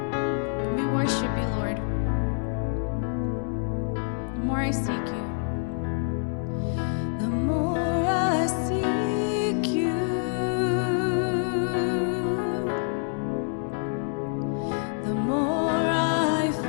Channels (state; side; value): silent; right; 60 dB below the other